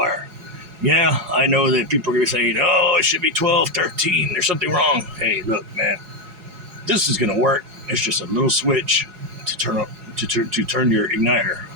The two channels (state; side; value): late; left; 4.8 ms